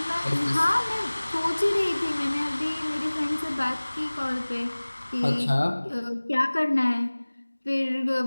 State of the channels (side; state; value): both; inverted; correlation -1.00